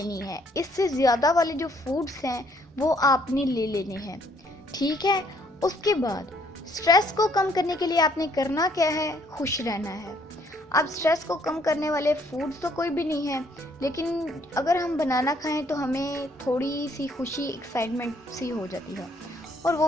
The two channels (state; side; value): normal; both; correlation 0.66